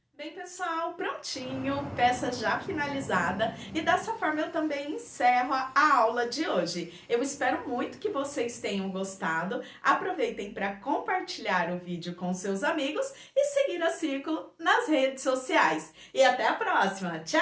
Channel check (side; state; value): both; identical; correlation 1.00